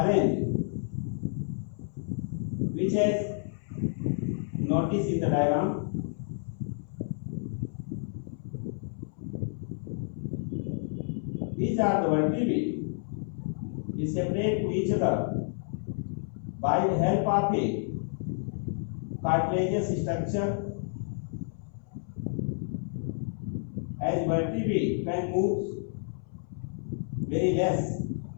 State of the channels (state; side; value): silent; right; 58 dB below the other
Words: arranged, which has noticed in the diagram. These are the vertebrae is separate to each other by the help of a cartilaginous structure. As vertebrae can move very less,